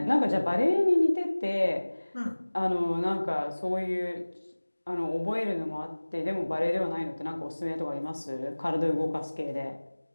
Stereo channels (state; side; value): inverted; both; correlation -1.00